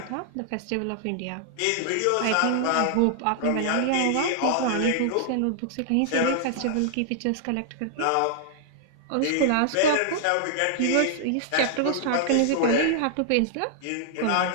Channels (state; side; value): different; both; correlation -0.01